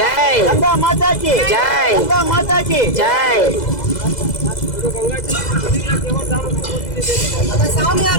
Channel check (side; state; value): right; late; 2.0 ms